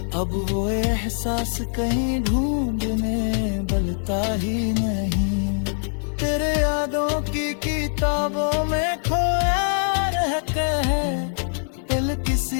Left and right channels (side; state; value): right; silent; digital silence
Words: अब वो एहसास कहीं ढूंढने बलता ही नहीं। तेरे यादों की किताबों में खोया रहता है, दिल